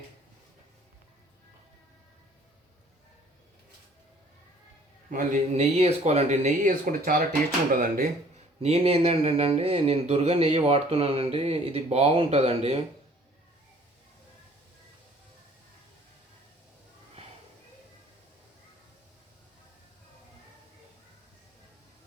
మళ్ళీ నెయ్యి వేసుకోవాలండి. నెయ్యి వేసుకుంటే చాలా టేస్ట్ ఉంటుందండి. నేను ఏంటంటే నేను దుర్గా నెయ్యి వాడుతున్నానండి. ఇది బాగుంటుందండి.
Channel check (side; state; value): both; normal; correlation 0.55